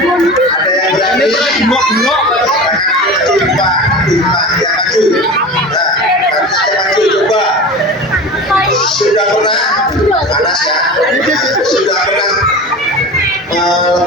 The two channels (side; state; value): both; normal; correlation 0.32